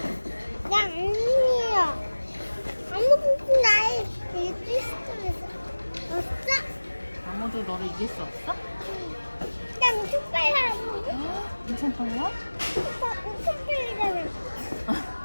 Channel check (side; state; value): both; inverted; correlation -1.00